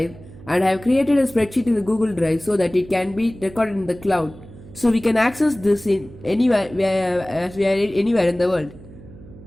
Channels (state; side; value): noise; right; hum, 19 dB below the sound